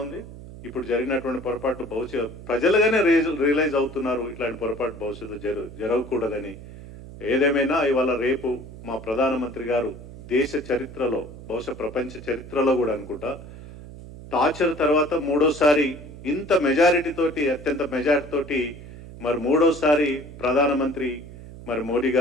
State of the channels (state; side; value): noise; right; hum, 15 dB below the sound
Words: ఉంది. ఇప్పుడు జరిగినటువంటి పొరపాటు ప్రజలుగానే రియలైజ్ అవుతున్నారు, ఇట్లాంటి పొరపాటు భవిష్యత్తు జరగకూడదని. ఏదేమైనా ఇవాళ రేపు మా ప్రధానమంత్రి గారు దేశ చరిత్రలో, బహుశా ప్రపంచ చరిత్రలో కూడా అనుకుంటా, టార్చర్ తర్వాత మూడోసారి ఇంత మెజారిటీ తోటి, అత్యంత మెజారిటీ తోటి మరి మూడోసారి ప్రధానమంత్రి మరి మోడీ